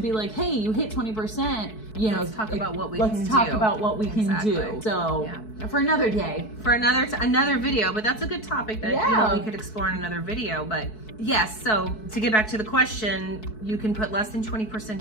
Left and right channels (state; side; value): late; right; 4.6 ms